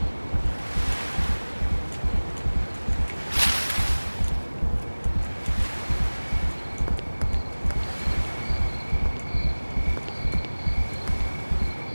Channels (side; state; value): both; inverted; correlation -1.00